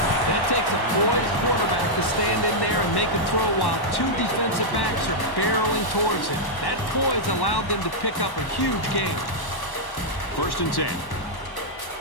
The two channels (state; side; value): late; right; 1.1 ms